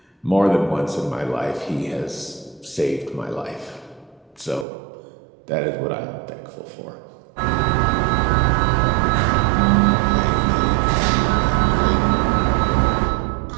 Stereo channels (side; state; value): left; drops out; at 4.7 s